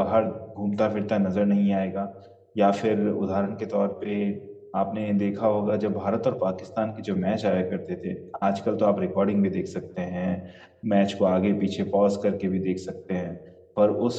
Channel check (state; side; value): identical; both; correlation 1.00